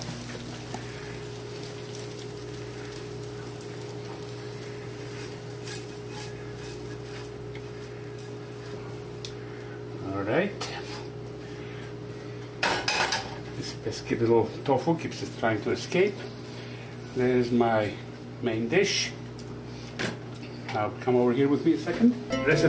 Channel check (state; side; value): identical; both; correlation 1.00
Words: All right. This pesky little tofu keeps it trying to escape. There's my main dish. Now come over here with me a second. Dress